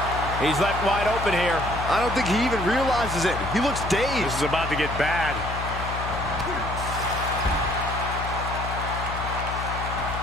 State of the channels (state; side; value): noise; left; hum, 6 dB below the sound